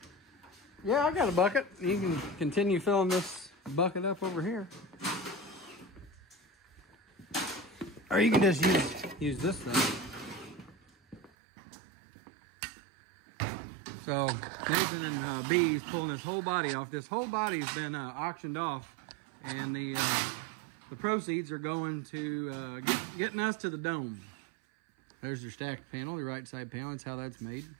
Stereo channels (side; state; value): left; drops out; at 11.3 s